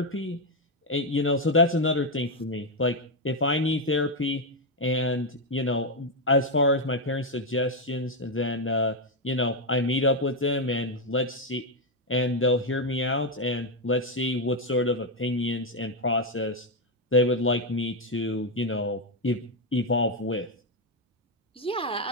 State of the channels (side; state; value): both; normal; correlation 0.04